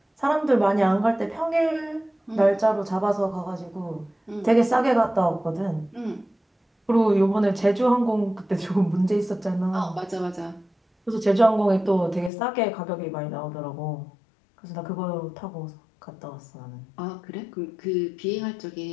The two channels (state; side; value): drops out; right; at 12.3 s